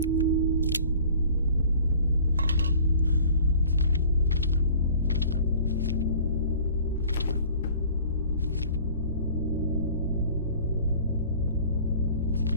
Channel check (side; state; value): both; inverted; correlation -0.48